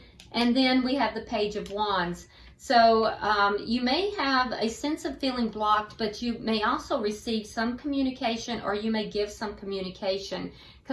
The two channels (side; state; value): both; identical; correlation 1.00